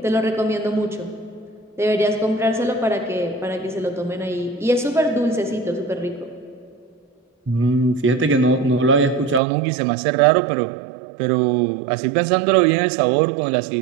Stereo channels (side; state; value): left; drops out; at 9.4 s